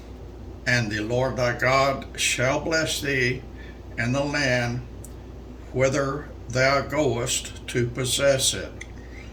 And the Lord thy God shall bless thee in the land whither thou goest to possess it.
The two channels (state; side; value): identical; both; correlation 1.00